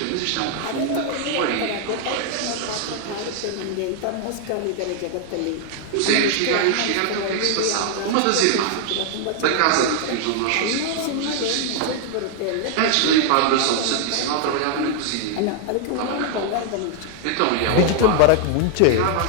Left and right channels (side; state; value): both; different; correlation 0.00